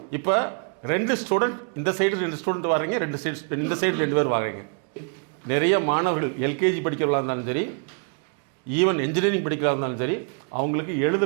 இப்போ 2 ஸ்டூடெண்ட் இந்த சைடு 2 ஸ்டூடெண்ட் வர்றீங்க, இந்த சைடு 2 பேர் வர்றீங்க. நிறைய மாணவர்கள் LKG படிக்கிறவர்களாக இருந்தாலும் சரி, ஈவன் இன்ஜினியரிங் படிக்கிறதா இருந்தாலும் சரி, அவங்களுக்கு எழுத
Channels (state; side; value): quieter; left; 39.5 dB